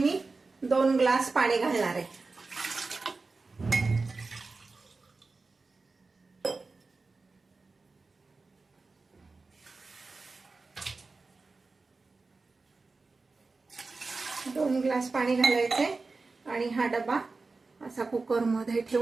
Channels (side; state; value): left; quieter; 3.9 dB